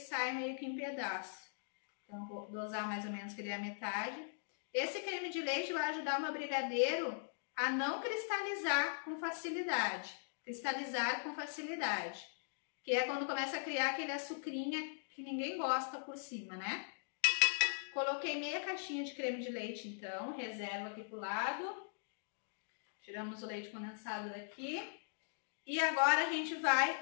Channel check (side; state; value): right; silent; digital silence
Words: meio que em pedaço. Então vou dosar mais ou menos que ele é a metade. Esse creme de leite vai ajudar o meu brigadeiro a não cristalizar com facilidade. Cristalizar com facilidade, que é quando começa a criar aquele açucrinha que ninguém gosta por cima, né? Coloquei meia caixinha de creme de leite, então, reservo aqui pro lado. Tiramos o leite condensado daqui. E agora a gente